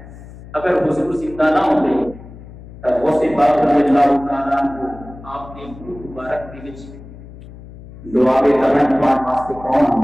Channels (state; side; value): noise; left; hum, 17 dB below the sound